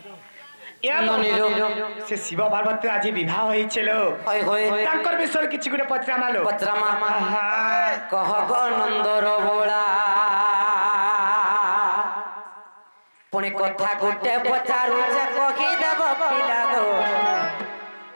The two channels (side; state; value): both; inverted; correlation -1.00